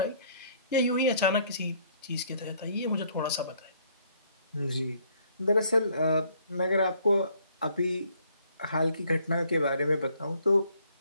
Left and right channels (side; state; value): both; inverted; correlation -0.64